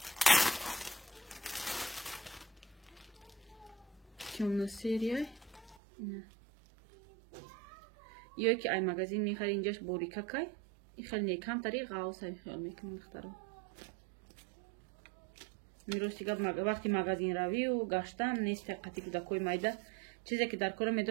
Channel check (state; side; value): drops out; left; at 5.8 s